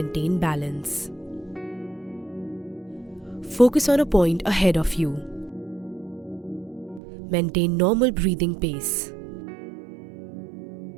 balance. Focus on a point ahead of you. Maintain normal breathing pace.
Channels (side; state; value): left; drops out; at 7.0 s